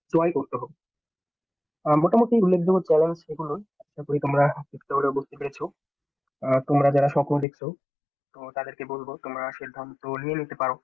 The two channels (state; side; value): drops out; right; at 7.5 s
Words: জয় করতে হবে। মোটামুটি উল্লেখযোগ্য চ্যালেঞ্জ এগুলো। আশা করি তোমরা চেষ্টা করে বুঝতে পেরেছো। তোমরা যারা স্বপ্ন দেখছো, তো তাদেরকে বলবো তোমরা সিদ্ধান্ত নিয়ে নিতে পারো